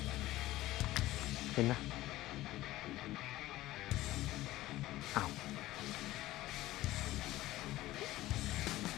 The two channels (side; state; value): right; quieter; 16.5 dB